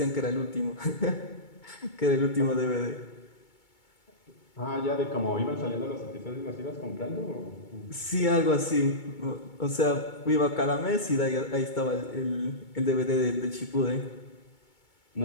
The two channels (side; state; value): right; late; 2.2 ms